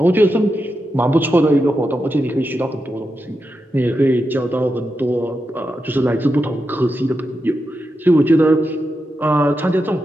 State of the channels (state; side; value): normal; both; correlation 0.87